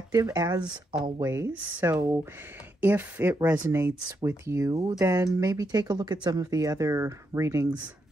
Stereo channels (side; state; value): both; normal; correlation 0.81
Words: as always. So if it resonates with you, then maybe take a look at some of the other readings